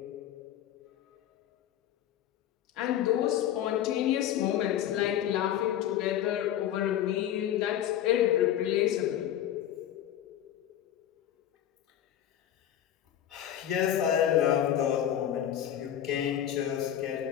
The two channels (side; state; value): right; quieter; 11.1 dB